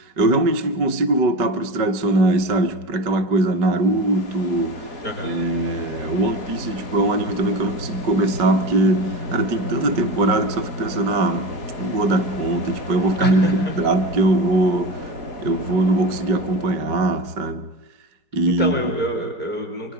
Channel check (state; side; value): late; left; 5.3 ms